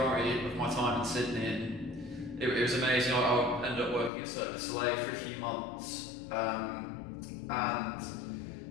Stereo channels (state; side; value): drops out; right; at 4.1 s